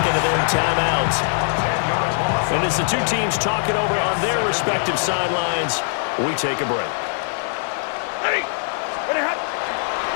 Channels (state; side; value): silent; right; digital silence